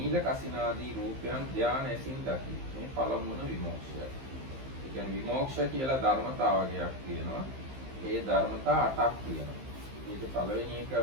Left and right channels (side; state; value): left; late; 15 ms